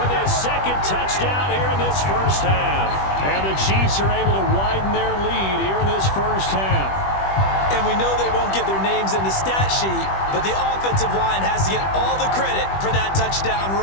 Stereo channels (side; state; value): right; late; 21 ms